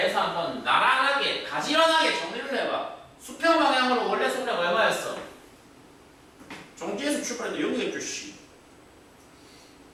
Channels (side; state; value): both; identical; correlation 1.00